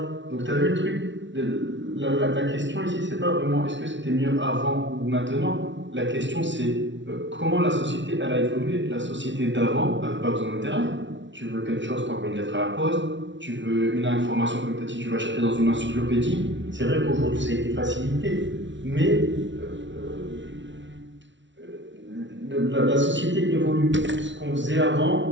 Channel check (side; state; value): left; late; 0.54 ms